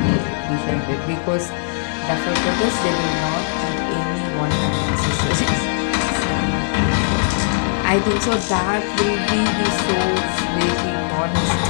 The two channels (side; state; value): right; silent; digital silence